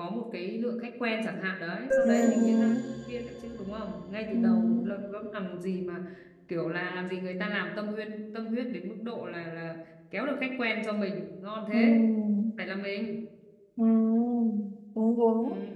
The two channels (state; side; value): identical; both; correlation 1.00